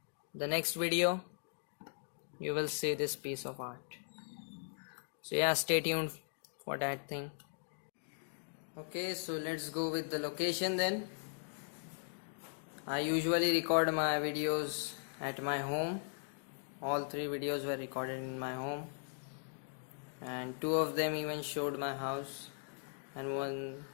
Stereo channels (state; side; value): silent; right; digital silence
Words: the next video you will see this piece of art. So yeah, stay tuned for that thing. Okay, so let's go with the location then. I usually record my videos at my home. All 3 videos were recorded in my home, and 2 of them even showed my house, and 1